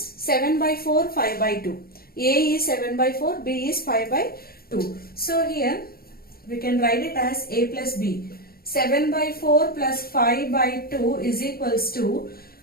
by 4, 5 by 2. A is 7 by 4, b is 5 by 2. So here we can write it as a plus b. 7 by 4 plus 5 by 2 is equals to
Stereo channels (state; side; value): late; right; 0.44 ms